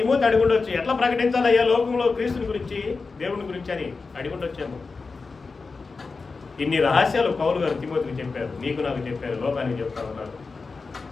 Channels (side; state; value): right; quieter; 4.3 dB